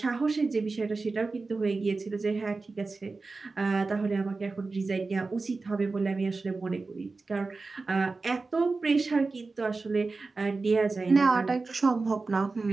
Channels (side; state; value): left; quieter; 3.9 dB